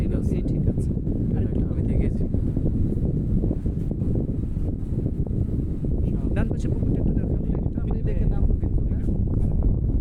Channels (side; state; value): both; identical; correlation 1.00